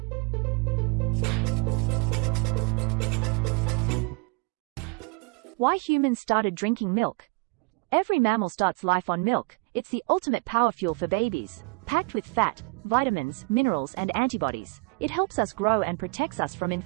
Why humans started drinking milk. Every mammal starts life on milk. It's the ultimate power fuel for babies. Packed with fat, vitamins, minerals, and antibodies, it helps us grow and protects us from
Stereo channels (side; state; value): left; quieter; 30.3 dB